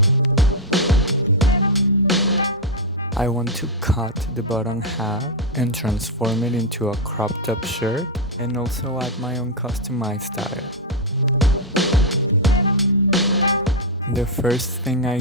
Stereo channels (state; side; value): normal; both; correlation -0.01